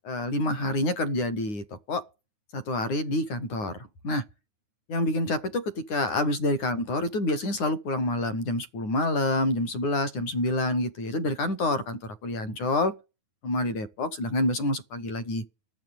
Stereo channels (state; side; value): late; right; 9.5 ms